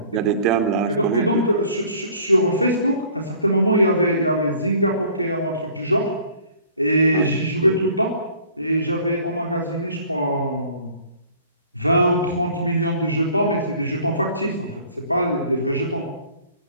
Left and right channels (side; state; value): both; inverted; correlation -0.52